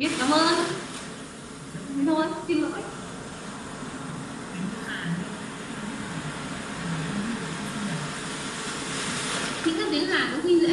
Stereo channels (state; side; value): identical; both; correlation 1.00